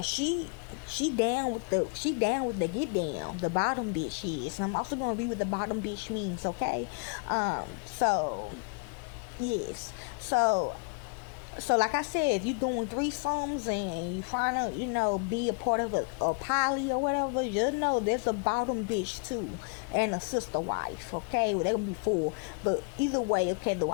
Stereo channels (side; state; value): right; quieter; 35.3 dB